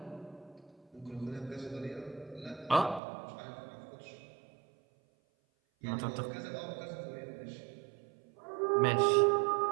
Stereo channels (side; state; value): left; drops out; at 3.0 s